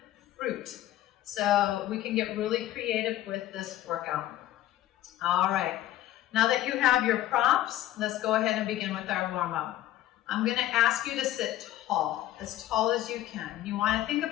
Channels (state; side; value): quieter; right; 14.0 dB